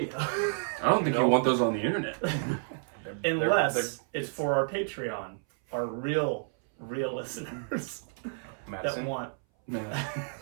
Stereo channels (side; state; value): left; silent; 58 dB below the other